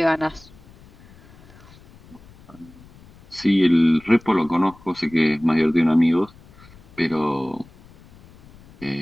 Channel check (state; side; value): noise; left; rumble, 24 dB below the sound